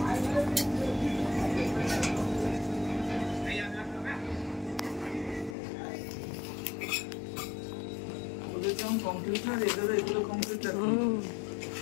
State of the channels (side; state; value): right; drops out; at 5.6 s